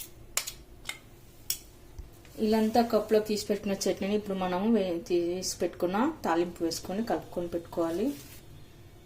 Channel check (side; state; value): both; identical; correlation 1.00